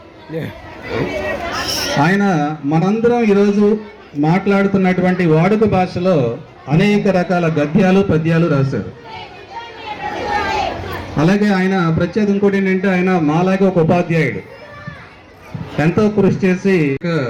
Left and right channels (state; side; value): identical; both; correlation 1.00